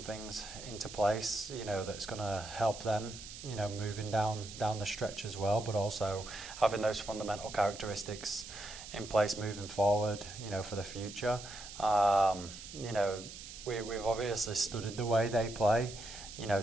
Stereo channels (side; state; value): right; noise; hiss, 12 dB below the sound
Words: things into place, that's going to help them, moving down the stretch as well, but also having those fundamental characteristics in place moving forward, for the future. We've obviously studied the way they play,